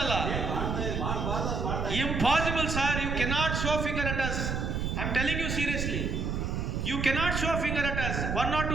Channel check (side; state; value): right; noise; rumble, 1 dB below the sound